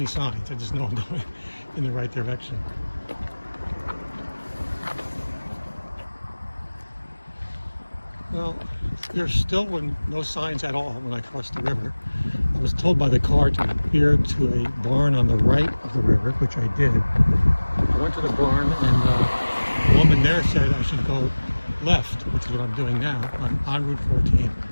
signs. I just know I'm going in the right direction. Well, there's still no signs at all when I crossed the river. I was told by the car to veer to a barn on the right of the river, which I did. I went to the barn, and the woman there said I should go left, which is what I'm doing now. I'm on Route 14.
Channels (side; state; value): both; inverted; correlation -1.00